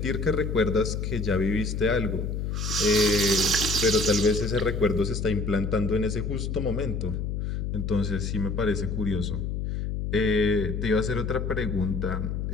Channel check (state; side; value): noise; left; hum, 2 dB below the sound